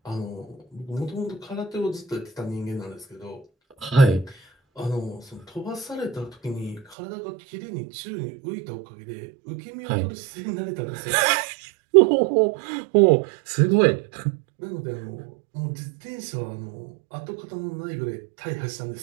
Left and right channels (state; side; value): drops out; left; at 7.0 s